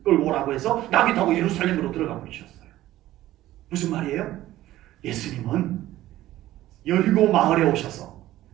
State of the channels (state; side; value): quieter; left; 15.0 dB